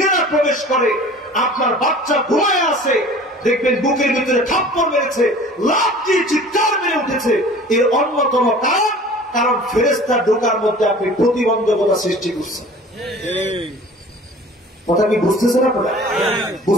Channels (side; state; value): both; normal; correlation 0.45